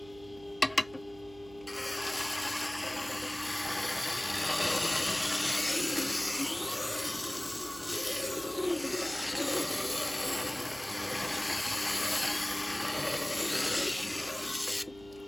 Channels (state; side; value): noise; right; hum, 21 dB below the sound